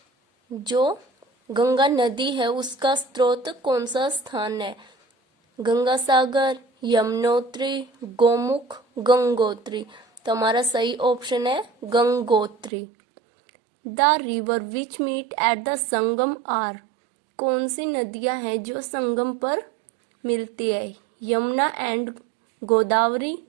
जो गंगा नदी है उसका स्रोत कौन सा स्थान है? गंगा सागर, यमुनोत्री, गोमुख, गंगोत्री। तो हमारा सही ऑप्शन है Gangotri. The river which meet at the Sangam are. कौन सी नदियां हैं जो संगम पर मिलती है? Yamuna and Godavari,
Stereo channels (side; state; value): left; drops out; at 12.7 s